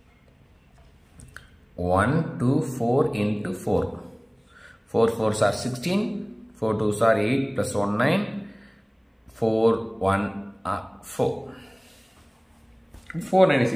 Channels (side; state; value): both; identical; correlation 1.00